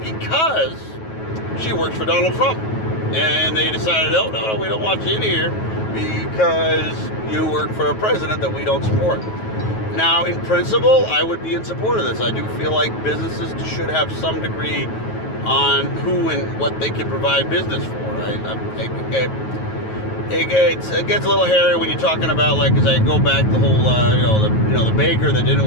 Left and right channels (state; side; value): late; right; 9.3 ms